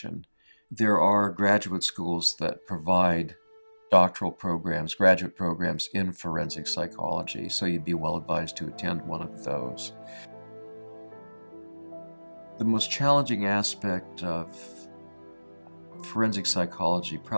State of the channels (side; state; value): both; inverted; correlation -1.00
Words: There are graduate schools that provide doctoral programs, graduate programs in forensic psychology, so you'd be well advised to attend one of those. The most challenging aspect of forensic psychology